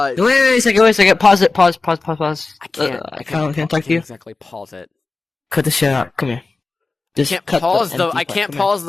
a second. Pause it. Pause. I can't. I can't talk to you. Exactly pause it. Cut the shit out. Come here. Just I can't cut pause the. empty I part. can't Come pause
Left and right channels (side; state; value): right; quieter; 3.7 dB